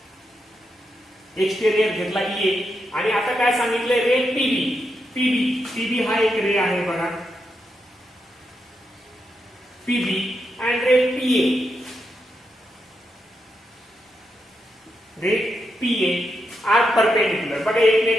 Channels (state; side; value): normal; both; correlation 0.84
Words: घेतला ए. आणि आता काय सांगितलंय, रे पीबी हा एक रे आहे बघा, PB and ray PA are perpendicular. बघा